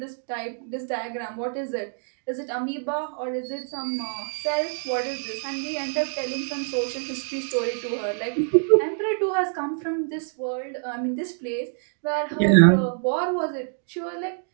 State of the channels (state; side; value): silent; left; 61 dB below the other